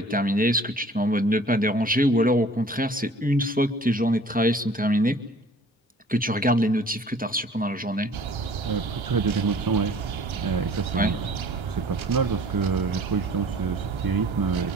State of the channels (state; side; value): normal; both; correlation 0.50